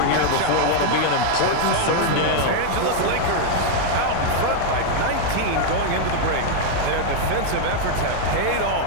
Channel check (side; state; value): both; different; correlation 0.00